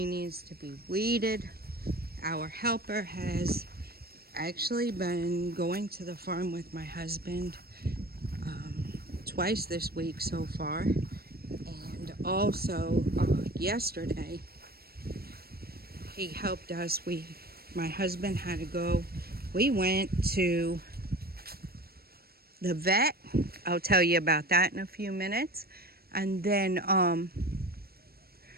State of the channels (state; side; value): late; left; 0.45 ms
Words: needs to be weeded. Our helper has actually been going to the farm with my husband twice this week so far, and also yesterday he helped us. My husband had to go. We went to the vet. I'll tell you about that in a few minutes. And then